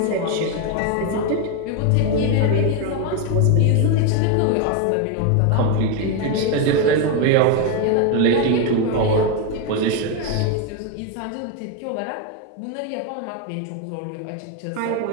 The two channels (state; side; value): different; both; correlation 0.02